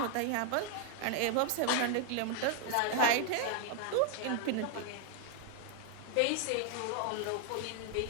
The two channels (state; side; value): different; both; correlation 0.00